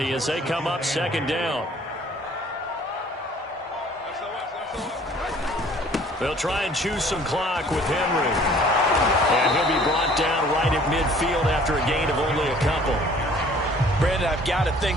as they come up 2nd down. They'll try and choose some clock with Henry. And he'll be brought down right at midfield after a gain of only a couple. Brandon, I've got to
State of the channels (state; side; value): normal; both; correlation 0.54